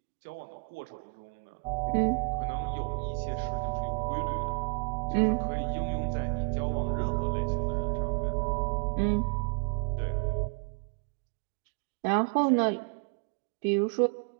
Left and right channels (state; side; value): quieter; left; 35.3 dB